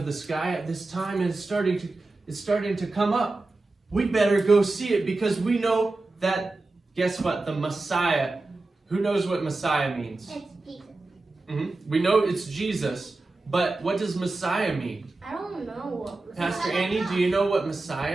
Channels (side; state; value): left; quieter; 3.2 dB